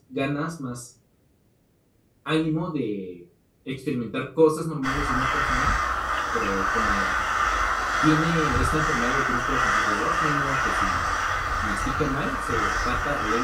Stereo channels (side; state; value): both; identical; correlation 1.00